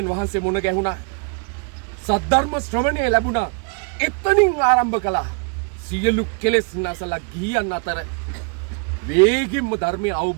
වහන්සේ මුණ ගැහුණා. සද්ධර්ම ශ්‍රවණය ලැබුණා. එතනින් ආරම්භ කළා. සියලු කෙලෙස් නැසලා ගියන් අතර වේගින්ම ධර්මය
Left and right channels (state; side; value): quieter; left; 37.8 dB